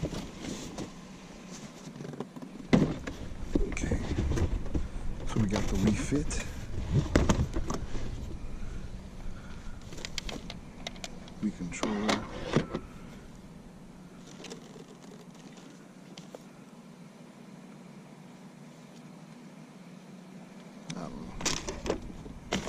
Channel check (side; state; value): both; identical; correlation 1.00